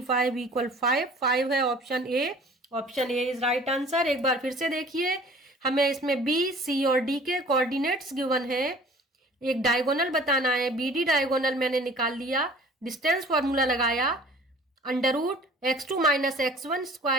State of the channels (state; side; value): normal; both; correlation 0.48